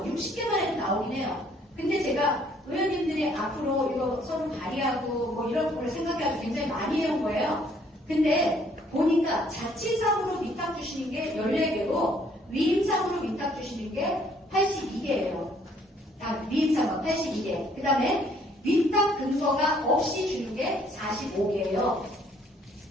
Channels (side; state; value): both; normal; correlation 0.63